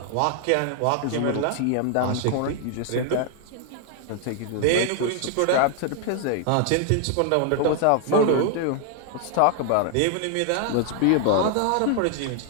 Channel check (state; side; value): different; both; correlation 0.00